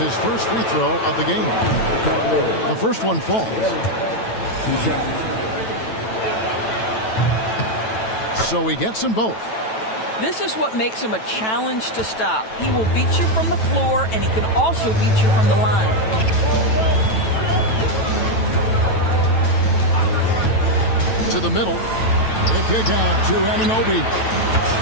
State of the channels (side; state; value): right; late; 9.1 ms